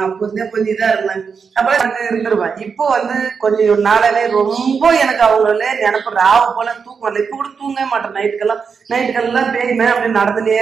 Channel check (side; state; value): left; quieter; 5.8 dB